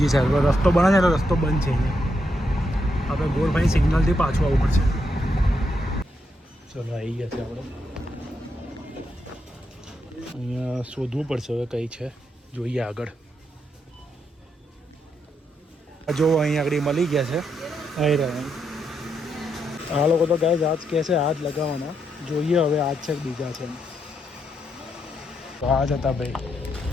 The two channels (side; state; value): both; normal; correlation 0.80